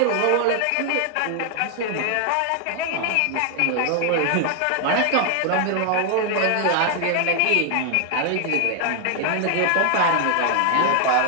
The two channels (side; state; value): both; different; correlation 0.00